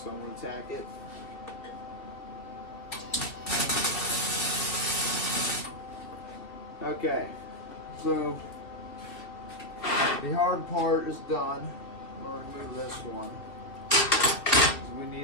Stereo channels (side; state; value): right; late; 2.4 ms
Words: I'm going to tack it. Okay, so the hard part is done. I'm going to remove this one because we